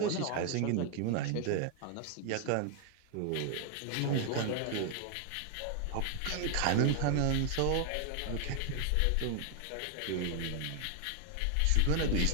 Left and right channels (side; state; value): both; different; correlation 0.00